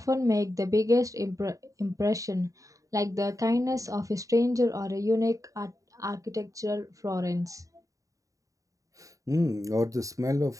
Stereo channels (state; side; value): late; left; 0.16 ms